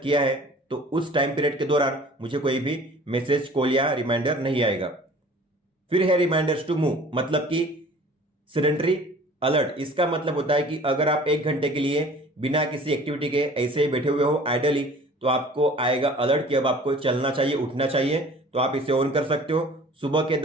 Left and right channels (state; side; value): normal; both; correlation 0.47